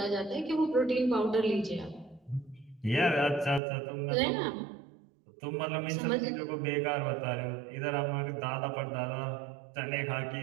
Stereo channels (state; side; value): drops out; left; at 3.6 s